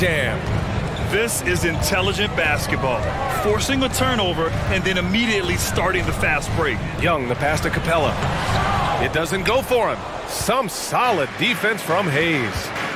This is intelligent basketball. Forcing a turnover and then immediately starting the fast break. Young, the pass to Capella. It doesn't go for him. Some solid defense from Hayes.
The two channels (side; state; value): both; identical; correlation 1.00